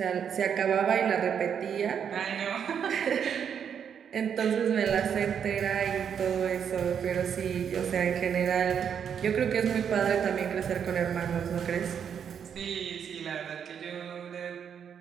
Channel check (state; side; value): quieter; left; 7.9 dB